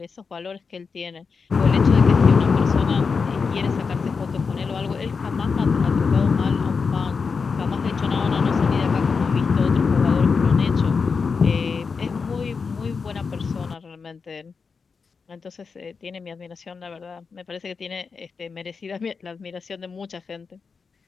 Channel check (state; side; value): quieter; right; 5.2 dB